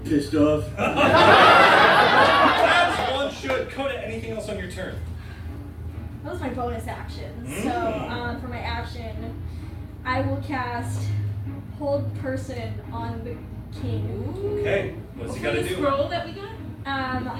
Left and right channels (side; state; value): both; identical; correlation 1.00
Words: off. As one should. Coda, anything else on your turn? That was my bonus action. Mm. So for my action, I will cast Hold Person on the king. Okay. What's he got to The do? scroll that we got?